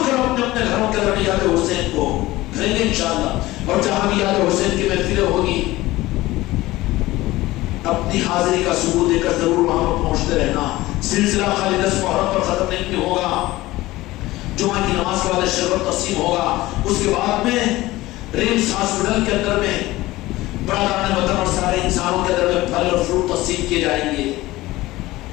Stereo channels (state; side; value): quieter; right; 18.2 dB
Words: کرو اپنے اپنے گھروں کے اندر یاد حسین کو کریں گے انشاءاللہ. اور جہاں بھی یاد حسین کی محفلیں ہوگی اپنی حاضری کا ثبوت دے کر ضرور وہاں پر پہنچتے رہنا. سلسلہ خالی 10 محرم پر ختم نہیں ہوگا. جمعہ کی نماز کے بعد شربت تقسیم ہوگا. اس کے بعد میں ریمس ہاسپٹل کے اندر میں برادران وطن اور سارے انسانوں کے اندر میں پھل اور فروٹ تقسیم کیے جائیں گے.